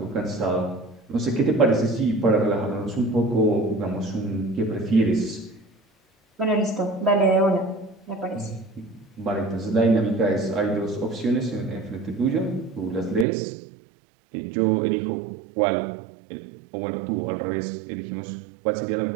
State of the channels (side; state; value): left; drops out; at 13.2 s